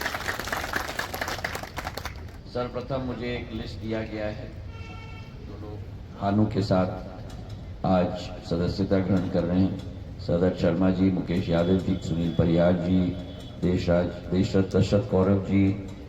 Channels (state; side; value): identical; both; correlation 1.00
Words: सर्वप्रथम मुझे एक लिस्ट दिया गया है जो लोग भानु के साथ आज सदस्यता ग्रहण कर रहे हैं। सदर शर्मा जी, मुकेश यादव जी, सुनील परिहार जी, देशरथ दशरथ कौरव जी,